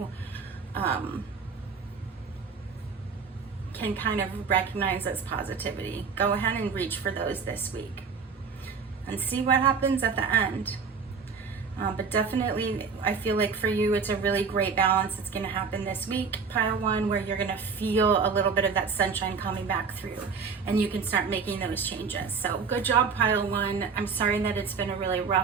can kind of recognize as positivity, go ahead and reach for those this week. and see what happens at the end. But definitely, I feel like for you, it's a really great balance. It's going to happen this week, pile 1, where you're going to feel a little bit of that sunshine coming back through, and you can start making those changes. So good job, pile 1. I'm sorry that it's been a really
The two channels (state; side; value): quieter; left; 5.5 dB